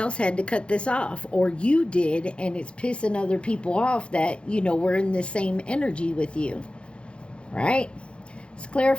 had to cut this off, or you did, and it's pissing other people off that, you know, we're in the same energy with you. Right? Let's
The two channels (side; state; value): right; late; 0.057 ms